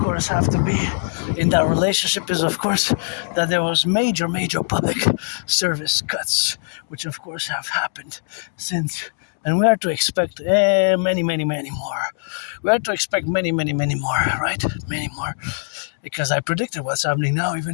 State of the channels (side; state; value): right; silent; digital silence